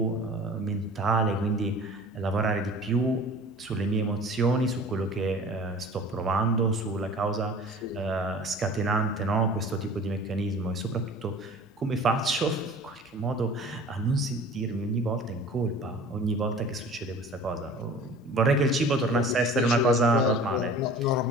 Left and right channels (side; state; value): both; normal; correlation 0.44